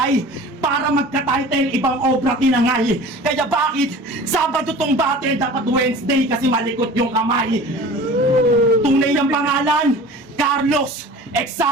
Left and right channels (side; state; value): both; normal; correlation 0.41